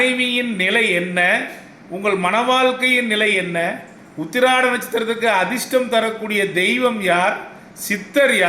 நிலை என்ன, உங்கள் மன வாழ்க்கையின் நிலை என்ன, உத்திராட நட்சத்திரத்துக்கு அதிர்ஷ்டம் தரக்கூடிய தெய்வம் யார், சித்தர்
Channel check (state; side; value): identical; both; correlation 1.00